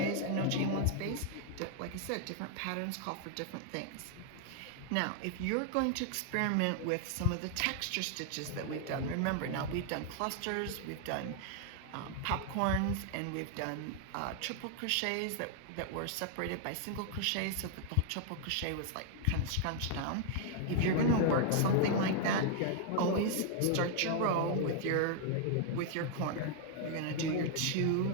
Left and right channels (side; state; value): both; different; correlation 0.00